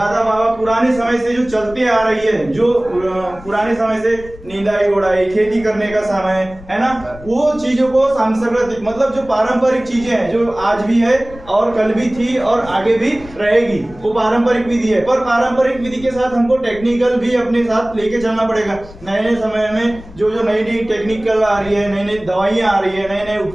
बाबा पुराने समय से जो चलते आ रही है, जो पुराने समय से निंदाई गोड़ाई, खेती करने का समय है ना, वो चीजों को सांस्कृतिक मतलब जो पारंपरिक चीजें हैं, जो आज भी है और कल भी थी और आगे भी रहेगी, वो पारंपरिक विधि है। पर पारंपरिक विधि के साथ हमको टेक्निकल भी अपने साथ लेके चलना पड़ेगा। नए नए समय में जो नई नई टेक्निकल आ रही है, नई नई दवाइयाँ आ रही है, नए नए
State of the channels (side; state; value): left; noise; rumble, 18 dB below the sound